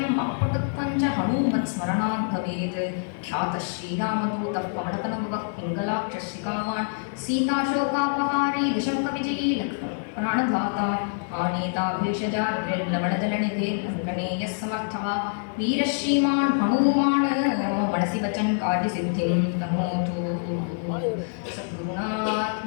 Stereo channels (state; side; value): silent; right; 57 dB below the other